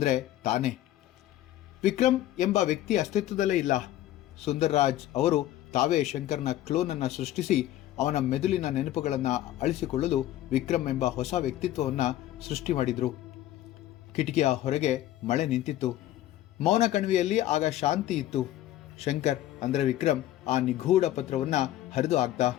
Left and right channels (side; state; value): right; quieter; 13.8 dB